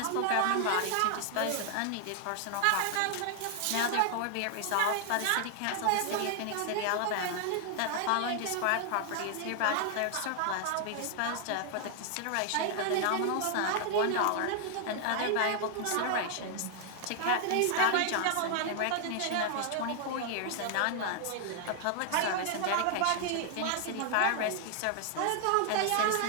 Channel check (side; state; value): both; different; correlation 0.00